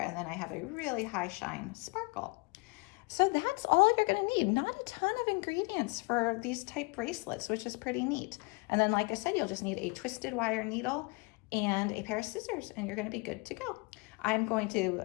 then I have a really high shine sparkle. So that's all you're gonna need. Not a ton of ingredients for these type bracelets, which is pretty neat. And then like I said, you'll just need a twisted wire needle and a pair of scissors, and you're gonna be good to go. I'm going to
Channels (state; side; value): quieter; right; 29.5 dB